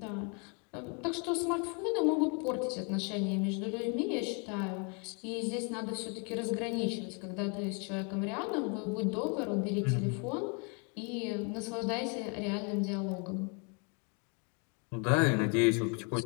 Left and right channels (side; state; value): right; quieter; 35.8 dB